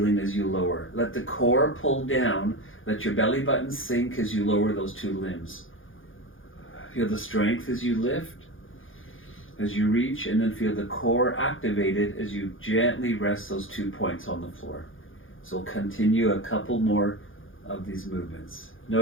as you lower. Let the core pull down. Let your belly button sink as you lower those two limbs. Feel the strength as you lift, as you reach, and then feel the core activated as you gently rest those 2 points on the floor. So we'll continue a couple more of these movements.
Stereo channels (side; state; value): right; late; 0.58 ms